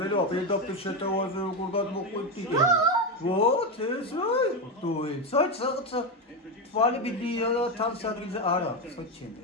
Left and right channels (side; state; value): both; normal; correlation 0.11